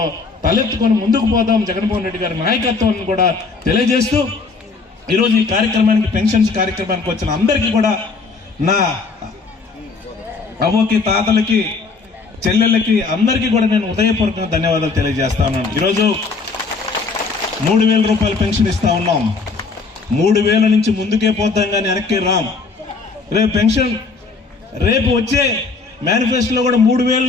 తలెత్తుకొని ముందుకు పోదాం. జగన్మోహన్ రెడ్డి గారి నాయకత్వాన్ని కూడా తెలియజేస్తూ ఈరోజు ఈ కార్యక్రమానికి పెన్షన్స్ కార్యక్రమానికి వచ్చిన అందరికీ కూడా నా అవ్వకి, తాతలకి, చెల్లెళ్ళకి అందరికీ కూడా నేను హృదయపూర్వకంగా ధన్యవాదాలు తెలియజేస్తా ఉన్నాను. ఈరోజు 3,000 రూపాయలు పెన్షన్ ఇస్తా ఉన్నాం. 3,000 నుంచి ముందుకే పోతాం కానీ వెనక్కి రాం. రేపు పెన్షన్ రేపు వచ్చే మేనిఫెస్టోలో కూడా 3,000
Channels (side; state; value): right; quieter; 4.3 dB